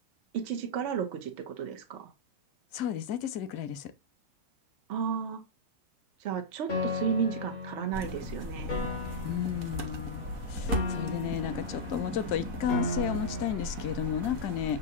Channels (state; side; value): late; right; 2.2 ms